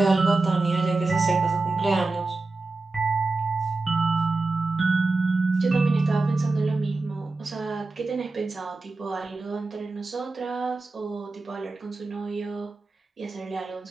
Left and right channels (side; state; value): left; quieter; 3.5 dB